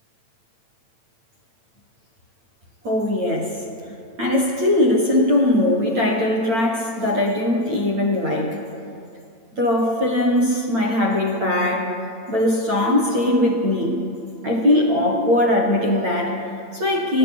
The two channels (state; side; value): late; left; 8.8 ms